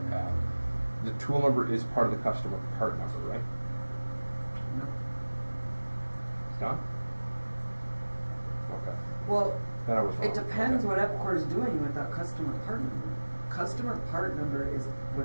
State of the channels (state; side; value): inverted; both; correlation -1.00